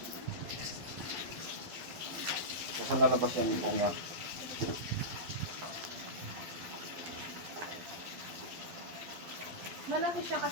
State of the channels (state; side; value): late; left; 12 ms